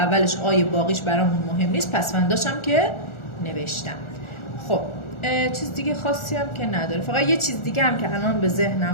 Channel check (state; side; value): late; right; 1.4 ms